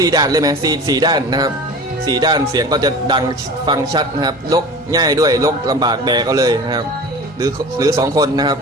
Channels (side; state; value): both; normal; correlation 0.37